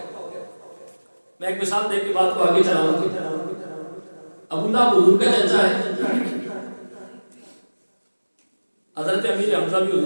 میں ایک مثال دے کے بات کو آگے چلاؤں گا۔ ابو لہب حضور کا چچا ہے، حضرت امیر حمزہ بھی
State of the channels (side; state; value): both; inverted; correlation -1.00